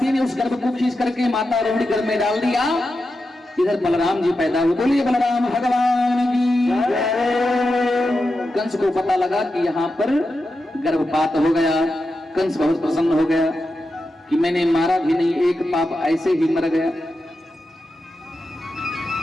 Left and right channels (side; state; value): both; normal; correlation 0.89